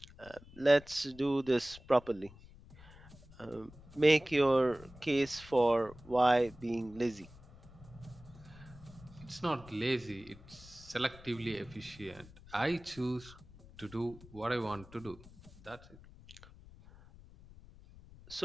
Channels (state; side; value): noise; left; rumble, 20 dB below the sound